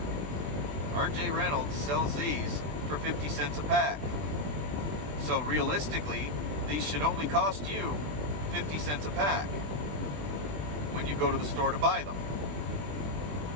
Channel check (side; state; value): left; late; 20 ms